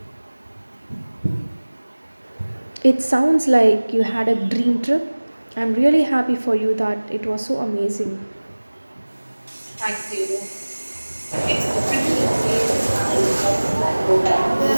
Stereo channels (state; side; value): inverted; both; correlation -1.00